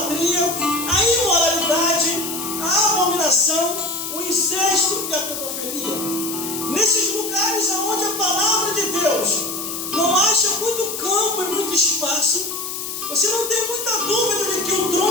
a imoralidade, a abominação, o incesto e a pedofilia. Nesses lugares onde a palavra de Deus não acha muito campo e muito espaço, você não tem muita dúvida de que o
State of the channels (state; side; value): noise; left; hiss, 6 dB below the sound